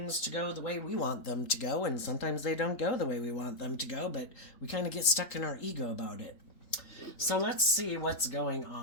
to go the way we want them to go. And sometimes they don't go the way we want them to go, but we kind of get stuck in our ego about it. So let's see what's going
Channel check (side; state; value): right; late; 3.8 ms